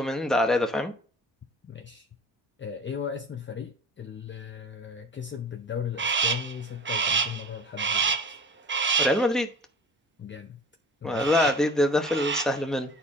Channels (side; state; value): both; normal; correlation 0.42